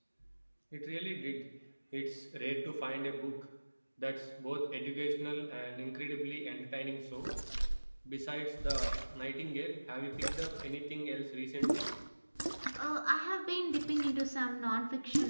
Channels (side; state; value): both; inverted; correlation -1.00